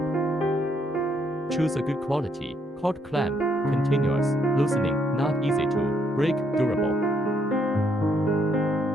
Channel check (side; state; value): both; normal; correlation 0.72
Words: Choose a good quality cord clamp. Continuous loosening, not easy to break, durable.